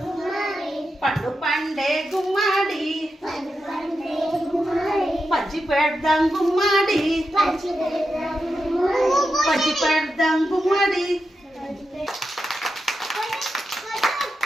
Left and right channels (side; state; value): both; normal; correlation 0.88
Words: పండు పండే గుమ్మాడి పంచి పెడదాం గుమ్మాడి పంచి పెడదాం గుమ్మాడి